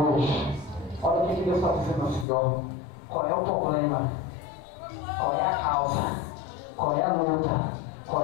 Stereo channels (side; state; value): right; drops out; at 2.2 s